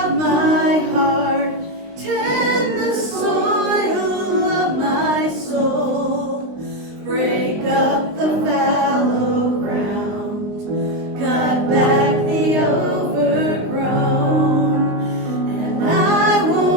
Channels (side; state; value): left; late; 19 ms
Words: my heart, tend the soil of my soul, break up the fallow ground, cut back the overgrown, and I